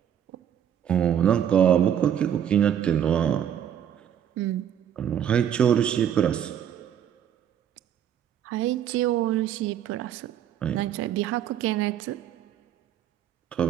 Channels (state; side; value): quieter; left; 9.5 dB